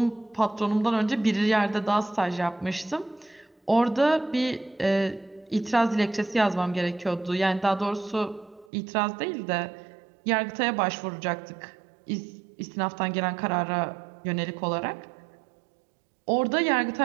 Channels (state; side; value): drops out; left; at 8.7 s